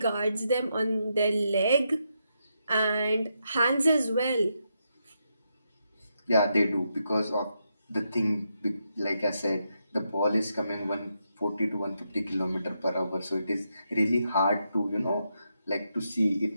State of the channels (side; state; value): both; inverted; correlation -0.82